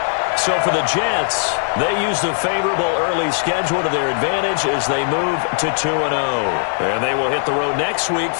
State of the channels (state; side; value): silent; right; 65 dB below the other